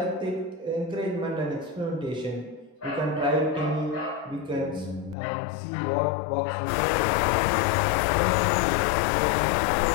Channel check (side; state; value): right; drops out; at 5.2 s